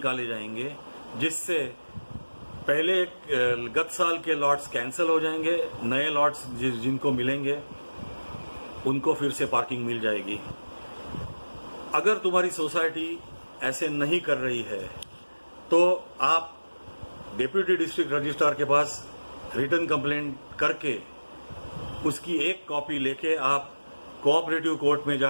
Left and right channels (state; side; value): inverted; both; correlation -1.00